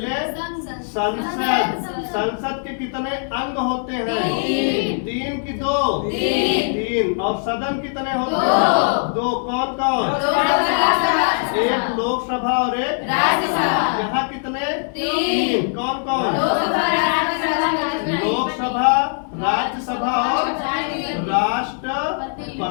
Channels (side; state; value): right; silent; digital silence